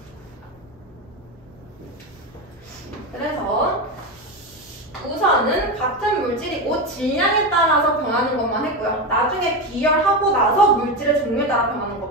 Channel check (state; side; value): normal; both; correlation 0.16